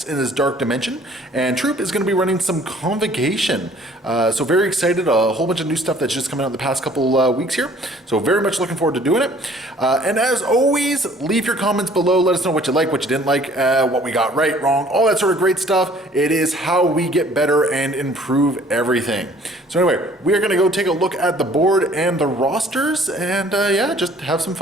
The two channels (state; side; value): normal; both; correlation 0.55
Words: in this dark dimension. And Troop is going to be running some Convocation. So very excited. A whole bunch of new stuff that's just coming out in the past couple weeks here. So very much looking forward to doing it. And as always, leave your comments below. Let us know what you like, what you didn't like, what we got right, wrong, all that sort of great stuff. It is how we get better and improve everything. So anyway, we are going to go take a look at the board and the rosters and yeah, just have some